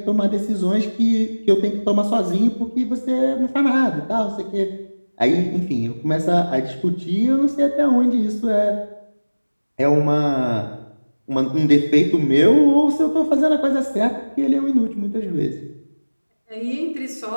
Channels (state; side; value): inverted; both; correlation -1.00